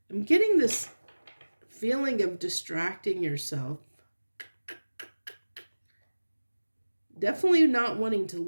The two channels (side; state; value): both; inverted; correlation -1.00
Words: I'm getting this feeling of distracting yourself. Definitely not wanting to